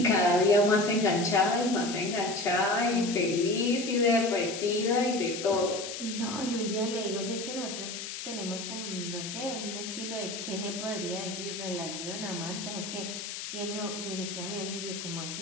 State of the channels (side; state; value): left; noise; hiss, 7 dB below the sound